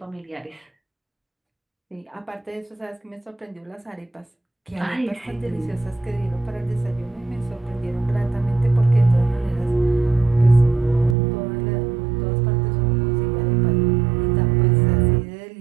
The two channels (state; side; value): drops out; left; at 11.2 s